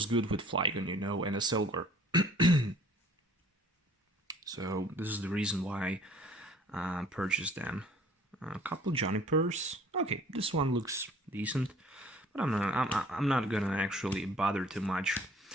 good with Flygon, you know, and a Silver. So this is the reason why I purchased them. A couple Junipers. Okay, this one looks decent, but I'm not gonna actually bother too much.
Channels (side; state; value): both; normal; correlation 0.53